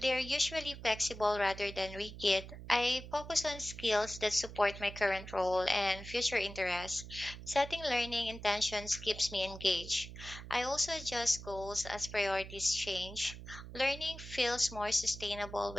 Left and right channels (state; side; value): noise; right; hum, 12 dB below the sound